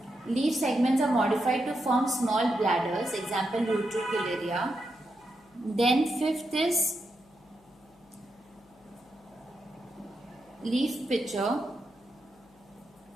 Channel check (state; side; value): noise; left; hum, 29 dB below the sound